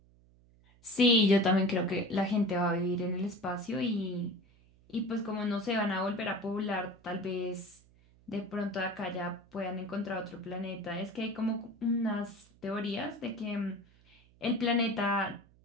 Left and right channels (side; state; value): right; noise; hum, 28 dB below the sound